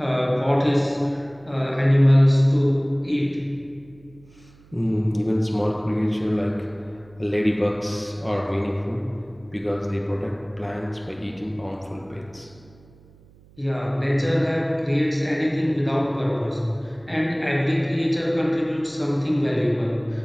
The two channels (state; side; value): noise; right; hum, 26 dB below the sound